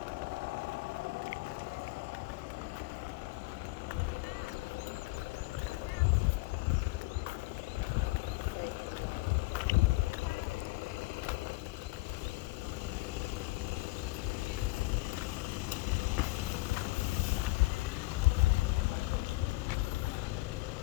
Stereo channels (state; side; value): quieter; right; 21.7 dB